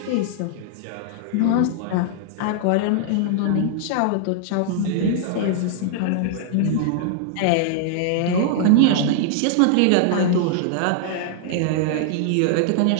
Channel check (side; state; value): both; different; correlation -0.01